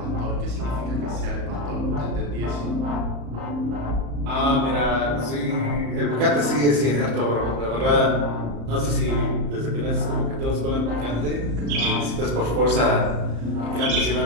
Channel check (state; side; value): late; left; 35 ms